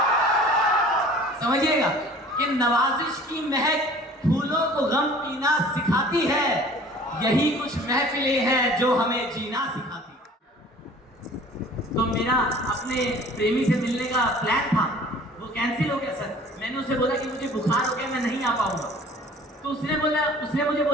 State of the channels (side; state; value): both; normal; correlation 0.48